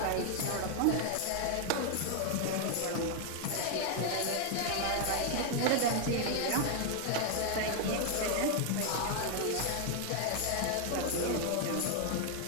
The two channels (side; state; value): both; different; correlation 0.00